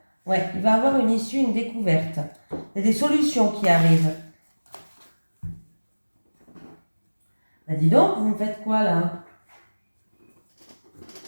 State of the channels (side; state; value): both; inverted; correlation -1.00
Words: Ouais, il va avoir une issue, une découverte. Il y a des solutions qui arrivent. Bah dis donc, vous me faites quoi là?